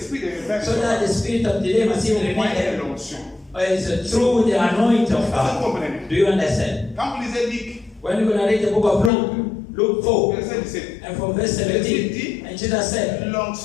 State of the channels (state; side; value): drops out; right; at 9.1 s